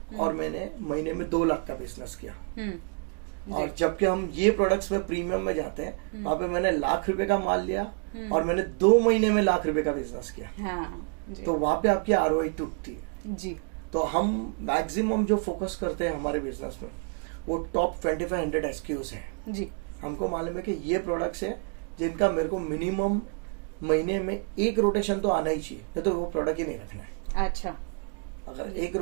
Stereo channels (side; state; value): left; quieter; 37.2 dB